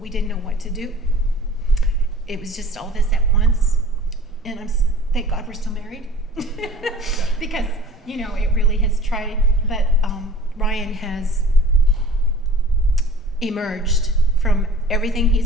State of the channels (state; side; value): normal; both; correlation 0.44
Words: didn't know what to do. It was just all this at once. And thank God we're still married. Because, you know, it really has tried. But Ryan has emerged from everything